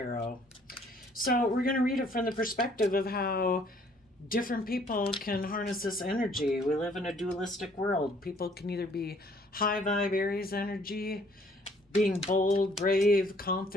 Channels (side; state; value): both; normal; correlation 0.61